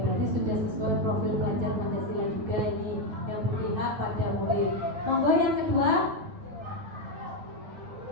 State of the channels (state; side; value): late; left; 9.4 ms